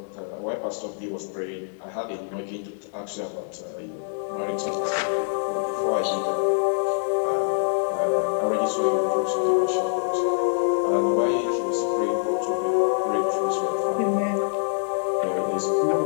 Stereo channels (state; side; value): silent; right; digital silence